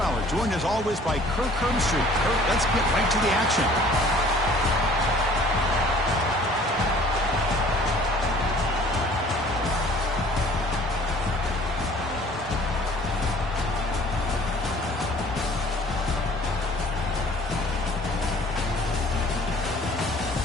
joined as always by Kirk Herbstreit. Kirk, let's get right to the action.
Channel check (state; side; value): normal; both; correlation 0.52